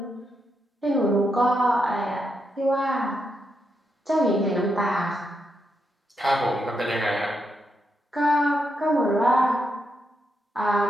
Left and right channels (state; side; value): normal; both; correlation 0.82